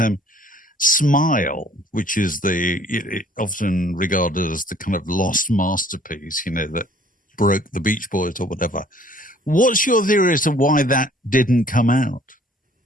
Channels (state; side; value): normal; both; correlation 0.56